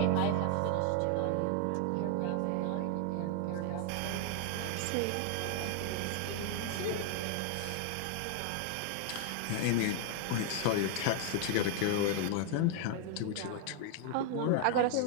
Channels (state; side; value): different; both; correlation 0.00